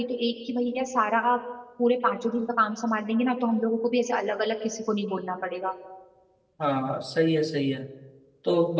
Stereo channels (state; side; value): identical; both; correlation 1.00